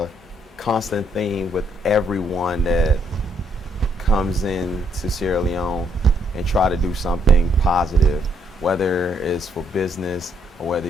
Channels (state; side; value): normal; both; correlation 0.71